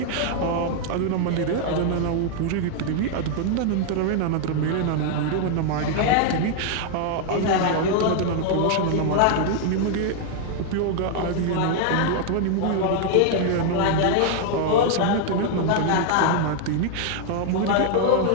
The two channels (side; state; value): both; different; correlation 0.00